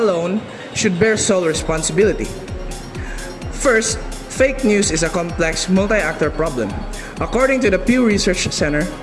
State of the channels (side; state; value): both; identical; correlation 1.00